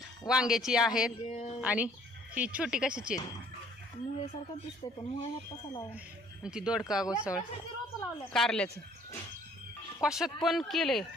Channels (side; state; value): both; normal; correlation 0.58